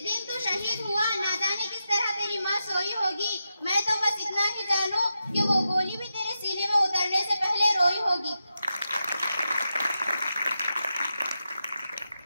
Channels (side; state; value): both; inverted; correlation -0.89